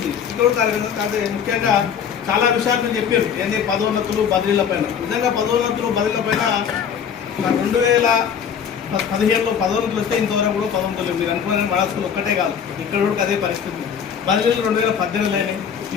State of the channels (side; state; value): right; quieter; 7.7 dB